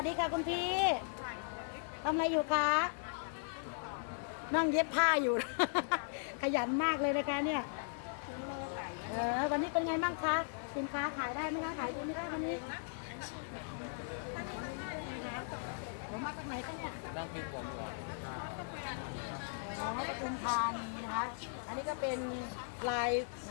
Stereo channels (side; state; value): right; silent; 53 dB below the other